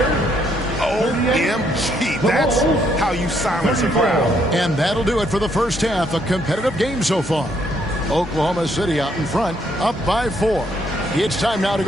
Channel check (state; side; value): normal; both; correlation 0.71